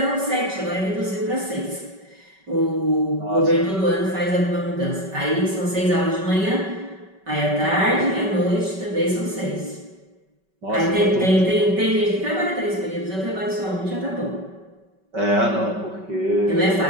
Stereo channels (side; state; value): left; late; 5.2 ms